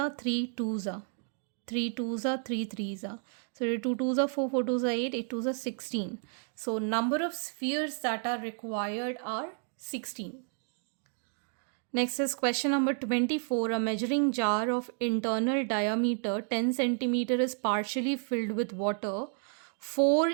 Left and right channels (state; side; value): silent; left; 56 dB below the other